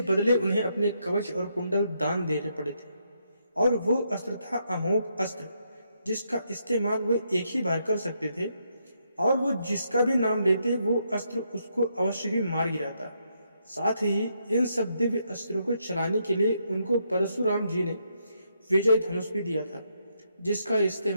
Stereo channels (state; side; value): inverted; both; correlation -0.78